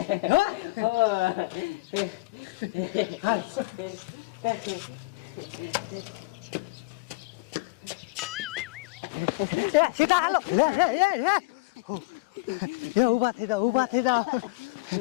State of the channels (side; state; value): right; quieter; 22.7 dB